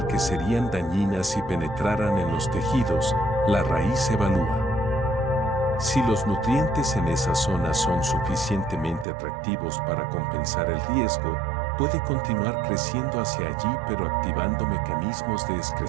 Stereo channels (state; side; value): drops out; left; at 9.1 s